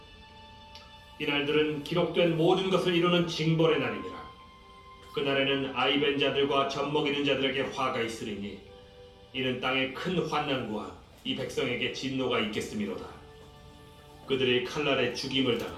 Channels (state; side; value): identical; both; correlation 1.00